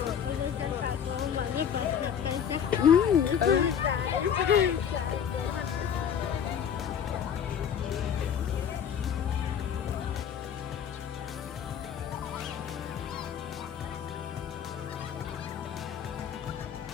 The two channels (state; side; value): quieter; right; 8.1 dB